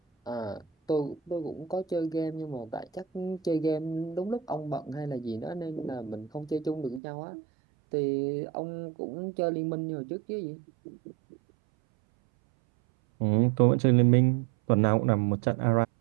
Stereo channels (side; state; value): left; drops out; at 7.0 s